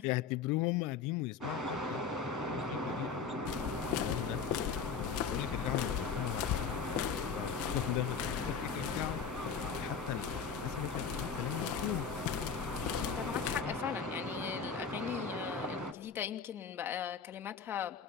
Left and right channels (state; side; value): quieter; right; 6.0 dB